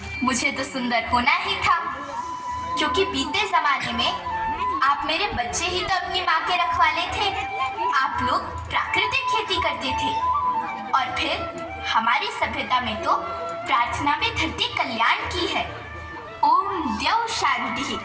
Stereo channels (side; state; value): both; identical; correlation 1.00